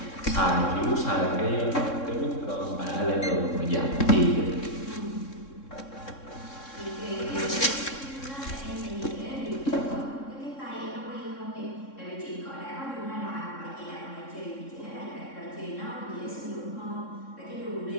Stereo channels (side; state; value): right; late; 3.6 ms